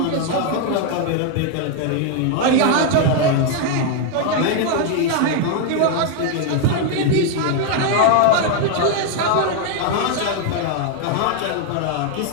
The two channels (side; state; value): both; different; correlation 0.01